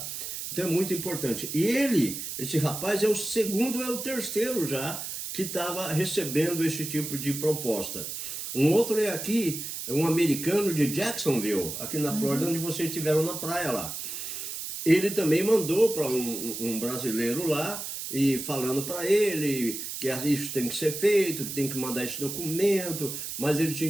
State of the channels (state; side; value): noise; right; hiss, 6 dB below the sound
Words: Então é muito importante. E esse rapaz é o segundo, é o terceiro já, que estava recebendo esse tipo de proposta. Um outro é aqui, é um americano de Jacksonville, aqui na Flórida, onde vocês estiveram na praia lá. Ele também mandou para um brasileiro lá, e falando para ele que isso tem que ser feito, que tem que mandar esse documento, mas ele